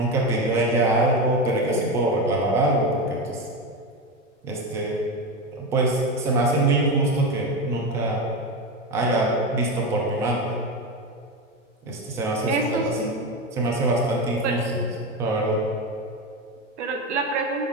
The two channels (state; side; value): normal; both; correlation 0.17